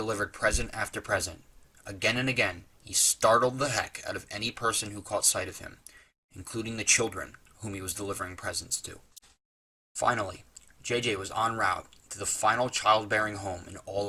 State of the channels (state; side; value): identical; both; correlation 1.00